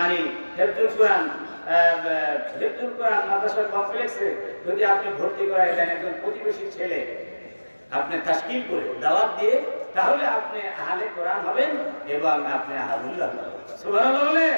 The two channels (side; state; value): both; inverted; correlation -1.00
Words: হেফজুল কোরআন মাদ্রাসা কমপ্লেক্সে যদি আপনি ভর্তি করায় দেন একজন প্রতিবেশী ছেলে, আপনি তাশকিল করে দাওয়াত দিয়ে, তাহলে আপনি আহলে কোরআন হবেন এবং আপনি আহলুল্লাহ হবেন। সুবহানাল্লাহ বলে।